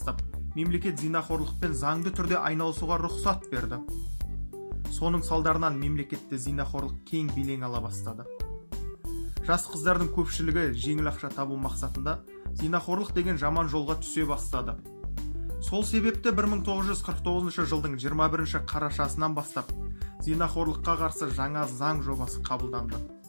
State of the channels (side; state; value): both; inverted; correlation -1.00